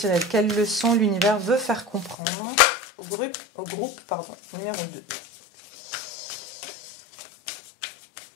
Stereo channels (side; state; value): right; drops out; at 2.1 s